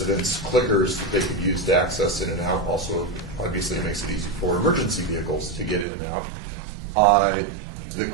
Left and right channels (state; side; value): drops out; left; at 5.9 s